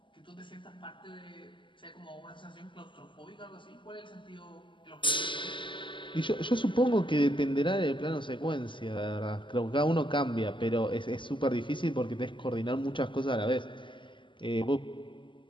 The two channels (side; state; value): right; late; 0.24 ms